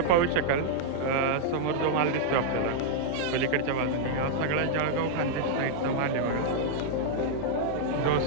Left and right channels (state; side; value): different; both; correlation -0.01